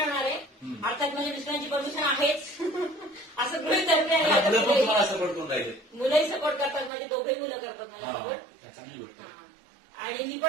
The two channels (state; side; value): drops out; left; at 6.9 s